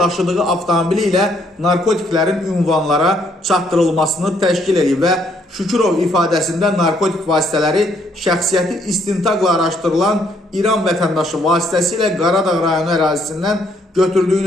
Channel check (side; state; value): both; normal; correlation 0.69